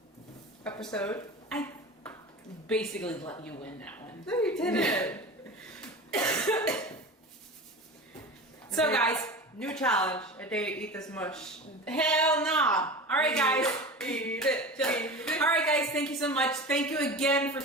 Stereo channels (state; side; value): normal; both; correlation 0.32